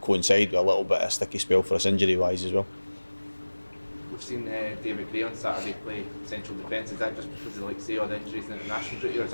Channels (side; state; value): both; inverted; correlation -1.00